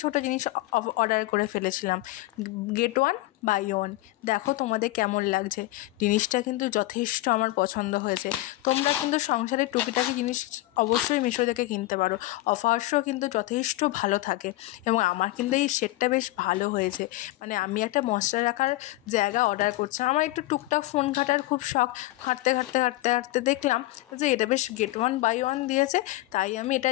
ছোটো জিনিস অর্ডার করে ফেলেছিলাম। Get one buy one. দেখো তোমাদের কেমন লাগছে। জিনিসটা কিন্তু যথেষ্ট আমার পছন্দ হয়েছে। তোমরা কিন্তু সংসারের টুকিটাকি জিনিস অবশ্যই মিশো থেকে কিনতে পারো। অফার্সও কিন্তু যথেষ্ট ভালো থাকে এবং আমার কিন্তু এই সেটটা বেশ ভালো হয়েছে। মানে আমি একটা মশলা রাখার জায়গা অর্ডার করছিলাম। আমার একটু টুকটাক ফোন ঘাটার খুব শখ। ঘাঁটতে দেখলাম যে এটা বেশ গেট ওয়ান বাই ওয়ান দিয়েছে, তাই আমি এটা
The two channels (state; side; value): quieter; right; 18.0 dB